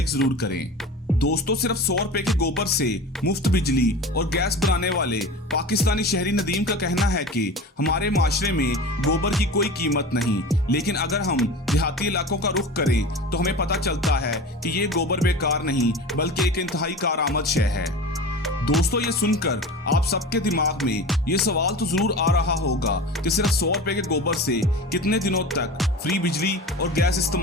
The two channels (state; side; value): normal; both; correlation 0.33